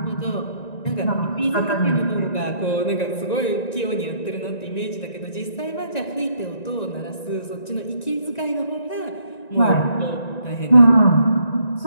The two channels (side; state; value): right; late; 1.9 ms